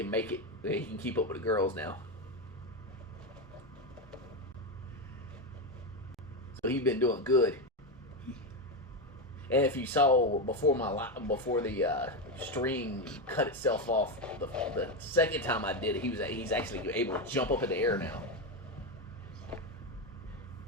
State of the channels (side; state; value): both; normal; correlation 0.11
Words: make it. He can keep up with the girls now. So he's been doing good. And if you saw before the string cut itself off, the second time I did it, he's actually able to jump up in the air now.